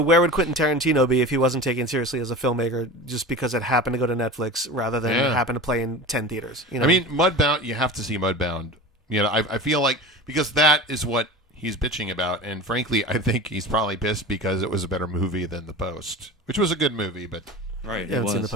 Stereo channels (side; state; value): both; normal; correlation 0.32